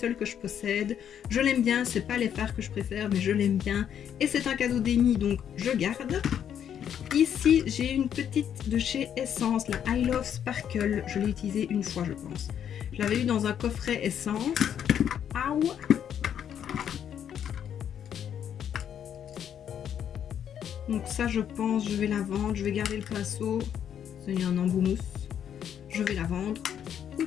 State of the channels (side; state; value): right; quieter; 9.1 dB